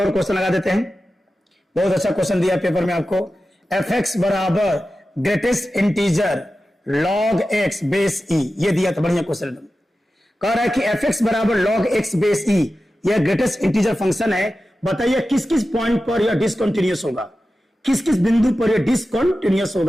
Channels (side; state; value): both; normal; correlation 0.93